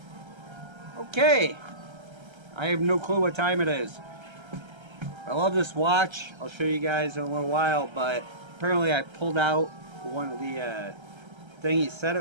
okay. I have no clue what time it is. I love this watch. I'll show you guys in a little while, but apparently I pulled out one of the thing he set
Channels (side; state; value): left; late; 1.3 ms